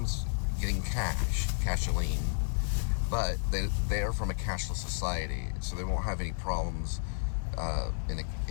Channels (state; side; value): silent; right; 57 dB below the other